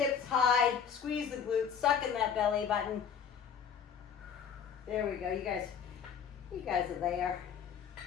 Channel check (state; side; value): quieter; right; 7.3 dB